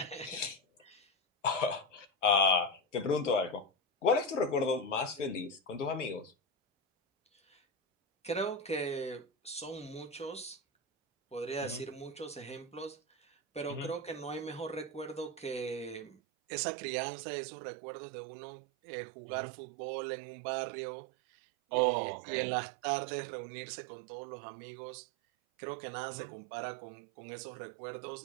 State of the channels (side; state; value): left; drops out; at 16.2 s